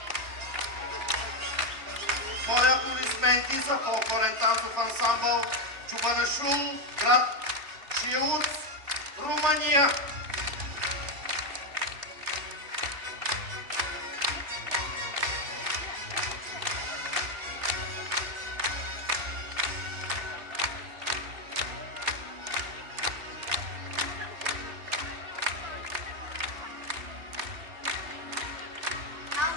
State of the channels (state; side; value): late; left; 2.7 ms